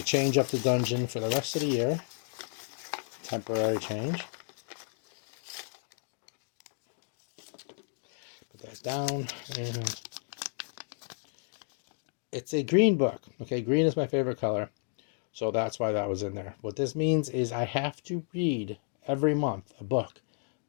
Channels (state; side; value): silent; right; 56 dB below the other